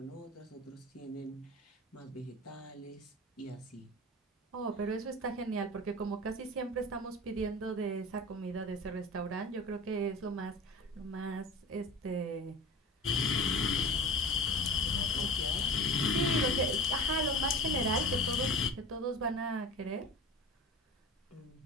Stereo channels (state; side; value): normal; both; correlation 0.33